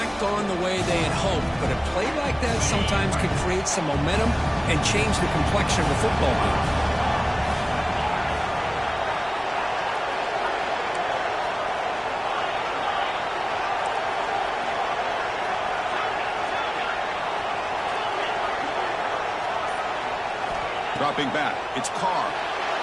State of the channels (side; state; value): both; identical; correlation 1.00